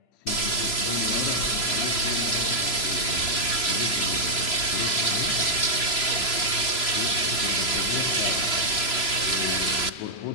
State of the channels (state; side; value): late; right; 3.0 ms